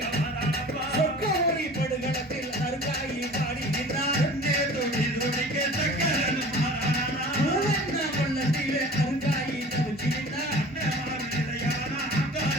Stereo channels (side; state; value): both; normal; correlation 0.42